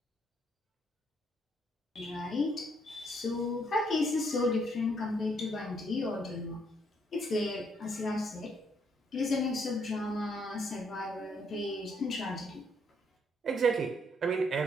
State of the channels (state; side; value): normal; both; correlation 0.71